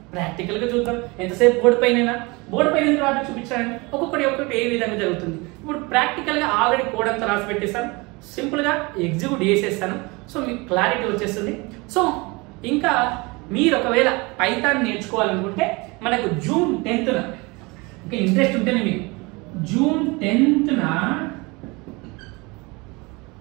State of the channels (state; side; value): quieter; left; 25.9 dB